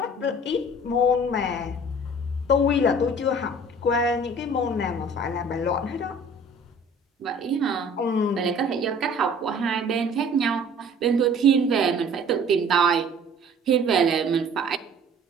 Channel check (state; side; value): normal; both; correlation 0.49